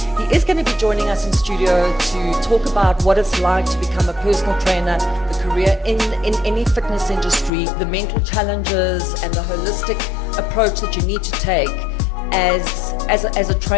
He is going to be joining us in studio to talk about what it's like to become a personal trainer, the career in any fitness industry, the mental challenges and the holistic approach that you need to take as a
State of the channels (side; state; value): right; drops out; at 7.5 s